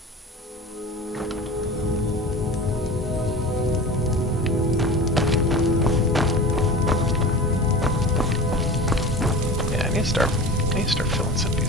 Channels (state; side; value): normal; both; correlation 0.34